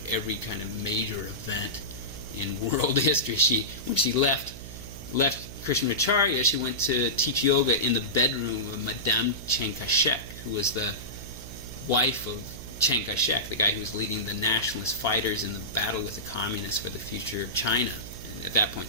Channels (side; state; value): right; noise; hum, 13 dB below the sound